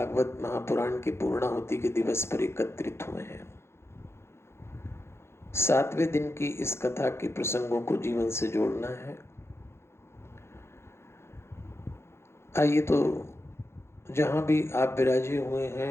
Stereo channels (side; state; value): right; late; 0.12 ms